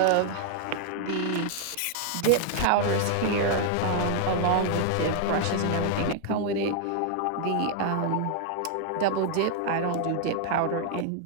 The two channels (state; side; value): different; both; correlation 0.00